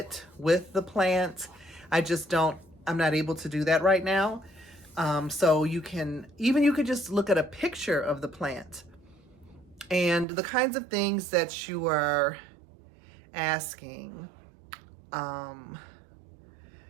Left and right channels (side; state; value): left; drops out; at 10.2 s